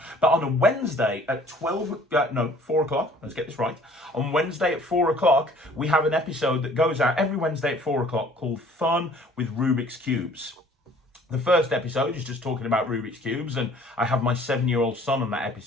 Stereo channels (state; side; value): normal; both; correlation 0.54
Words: But on a Wednesday at 4 o'clock, let's get this right, on Wednesday at 4 o'clock, we have an episode that goes out every Wednesday at 4 o'clock called Fun with Rubik's Cubes. The first episode is just talking about Rubik's Cubes, and I have my 7-year-old son on that